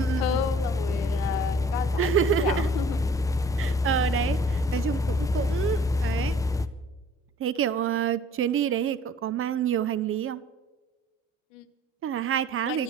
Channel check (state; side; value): normal; both; correlation 0.52